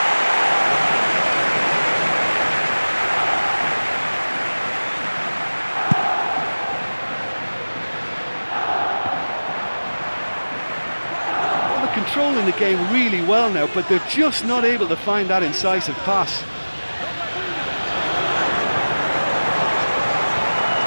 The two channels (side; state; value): both; inverted; correlation -1.00